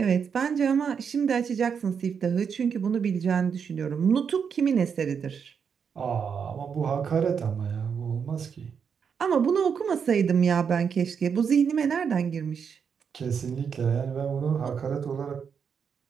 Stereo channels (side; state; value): left; quieter; 6.8 dB